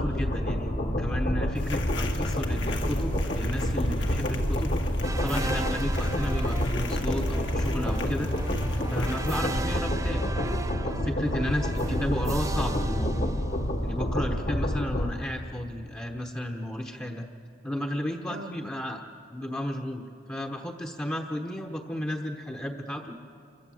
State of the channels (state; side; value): normal; both; correlation 0.80